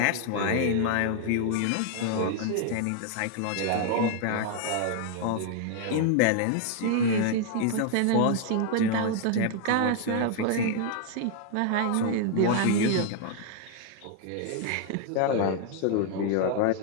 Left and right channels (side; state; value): both; different; correlation 0.00